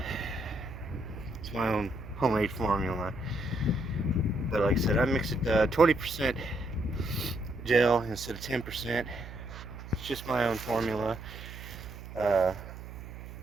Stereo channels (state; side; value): noise; right; hum, 12 dB below the sound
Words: my own homemade formula. But like I said, I mix it 20% gel instead of 10%. It's just my own formula.